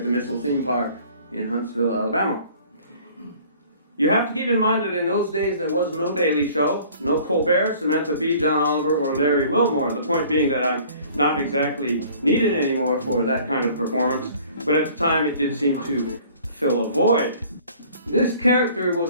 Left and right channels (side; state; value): both; inverted; correlation -0.52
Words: the Missile Theme Park in Huntsville, Alabama. You have to keep in mind that in those days there was no Daily Show, no Colbert, Samantha Bee, John Oliver, or Larry Wilmore. The point being that I'm not exactly needed anymore for that kind of performance, but at the time it did seem to fill a void. This character was